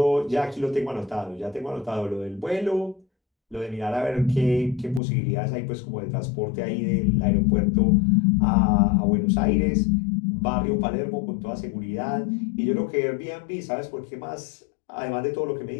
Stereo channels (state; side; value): drops out; right; at 5.0 s